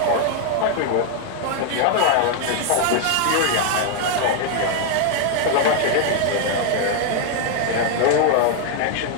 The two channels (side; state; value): both; different; correlation 0.00